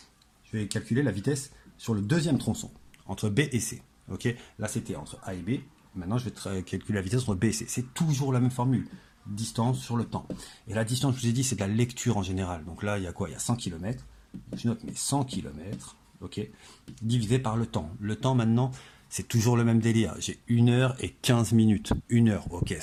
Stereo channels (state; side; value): identical; both; correlation 1.00